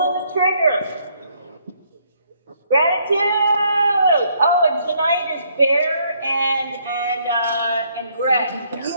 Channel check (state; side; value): inverted; both; correlation -0.68